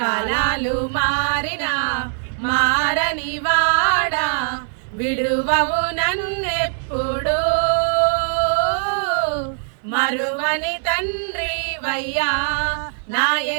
మారినా మారని వాడా విడువవు నన్నెప్పుడు మరువని తండ్రి వయ్యా నా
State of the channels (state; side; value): silent; left; 63 dB below the other